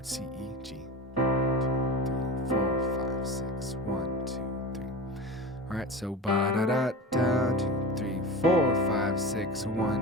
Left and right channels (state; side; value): normal; both; correlation 0.29